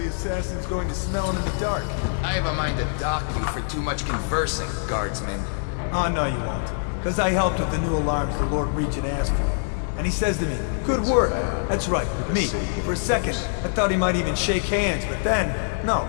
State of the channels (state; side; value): silent; right; 60 dB below the other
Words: Going to smell him in the dark. I have a mind to dock you for too much conversing, guardsman. Oh, no you won't. Because I helped with the new alarms the Lord Regent asked for. And he says to me, good work. That's right, me. For a second, I thought he might even shake hands, but then, no,